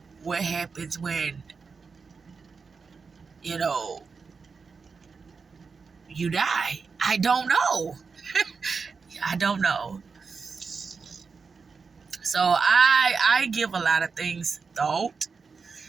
what happens when, you die. I don't know. I don't know. So I give a lot of things thought,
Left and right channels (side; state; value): left; quieter; 5.0 dB